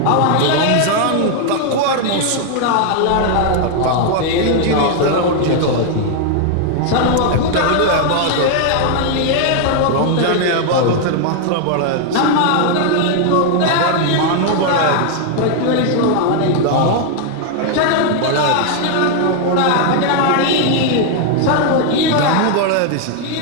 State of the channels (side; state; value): both; different; correlation 0.00